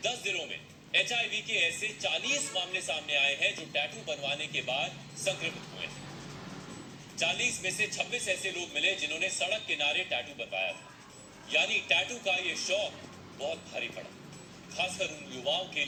10 जिलों में एचआईवी के ऐसे 40 मामले सामने आए हैं जो टैटू बनवाने के बाद संक्रमित हुए। 40 में से 26 ऐसे लोग मिले जिन्होंने सड़क किनारे टैटू बनवाया था। यानी टैटू का ये शौक बहुत भारी पड़ा, खासकर उन युवाओं के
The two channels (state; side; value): identical; both; correlation 1.00